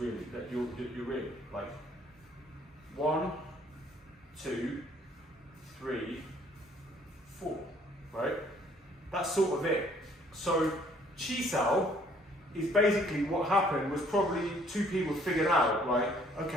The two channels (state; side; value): normal; both; correlation 0.61